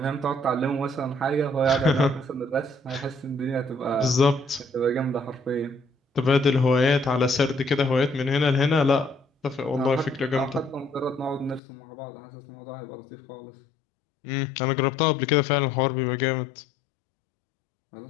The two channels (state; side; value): drops out; right; at 11.6 s